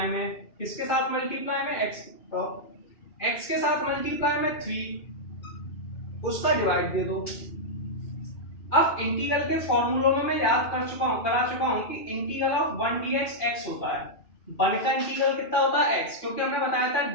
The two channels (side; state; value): right; late; 2.4 ms